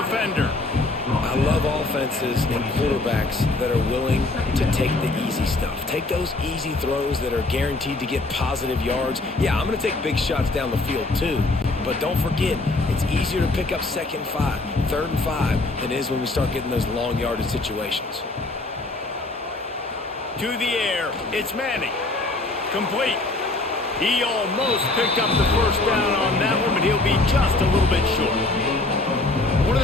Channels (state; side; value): quieter; right; 3.1 dB